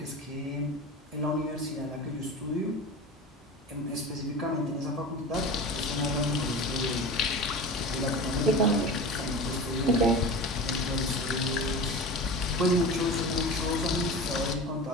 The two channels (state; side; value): normal; both; correlation 0.32